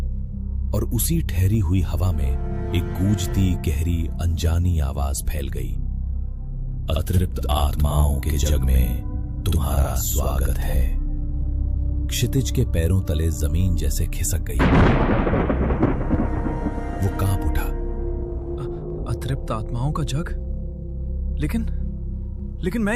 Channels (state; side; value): identical; both; correlation 1.00